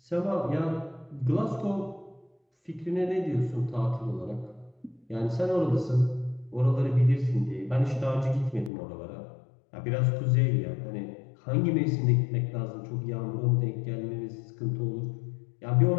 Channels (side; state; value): right; drops out; at 8.7 s